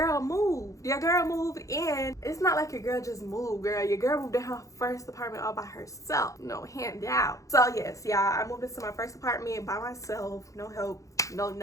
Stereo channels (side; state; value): right; late; 0.16 ms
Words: moved. Your girl moved in. It's not like your girl just moved, girl. Your girl moved in her first apartment all by herself. No handout. So yes, y'all, I moved into my first apartment by myself. No help, no